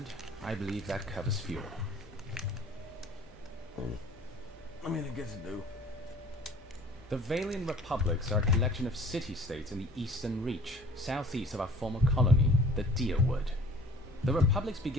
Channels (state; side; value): normal; both; correlation 0.49